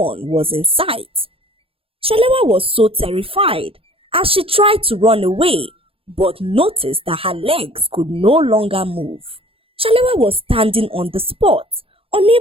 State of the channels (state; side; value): late; left; 0.27 ms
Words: was in sight. Shalewa was so terrified as she tried to run away, but noticed that her legs could no longer move. Shalewa was standing on the spot,